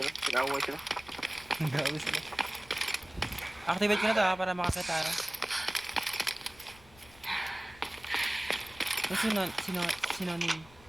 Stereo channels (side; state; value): left; noise; rumble, 23 dB below the sound